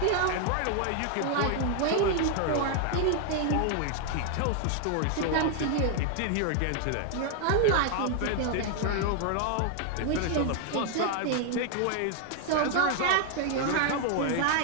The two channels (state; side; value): different; both; correlation 0.00